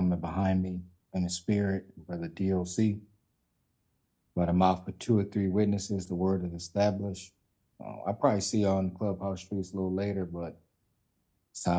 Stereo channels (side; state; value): both; identical; correlation 1.00